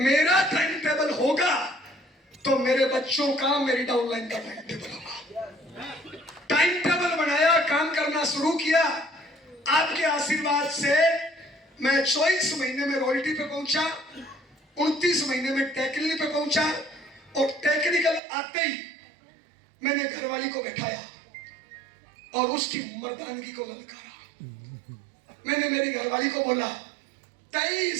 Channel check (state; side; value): drops out; left; at 18.2 s